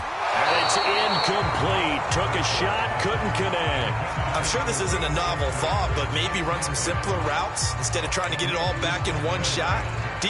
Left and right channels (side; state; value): both; identical; correlation 1.00